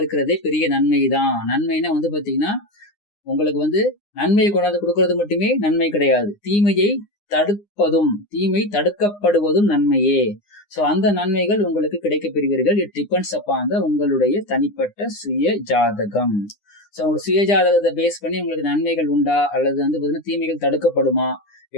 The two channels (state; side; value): late; right; 9.8 ms